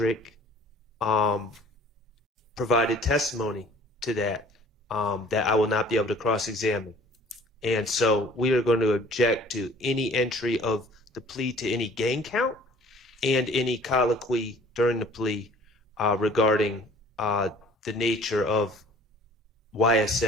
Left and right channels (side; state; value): both; normal; correlation 0.52